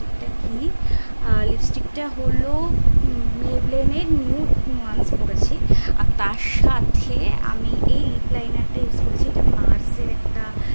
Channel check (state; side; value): inverted; both; correlation -1.00